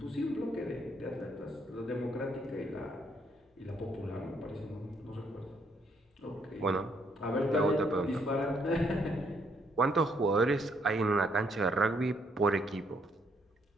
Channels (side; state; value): both; normal; correlation 0.71